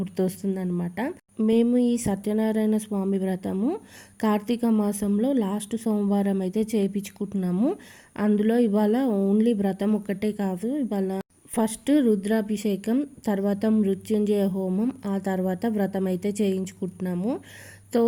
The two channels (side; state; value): both; identical; correlation 1.00